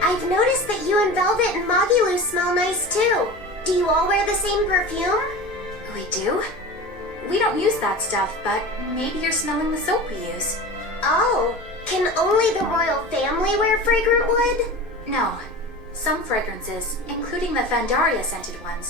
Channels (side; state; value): both; normal; correlation 0.32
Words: I've noticed that you and Velvet and Magilu smell nice too. Do you all wear the same perfume? We do? We don't use that stuff, but maybe you're smelling the soap we use. Oh, can only the royal family wear fragrant wood? No. Some fragrances, including the Fandaria scented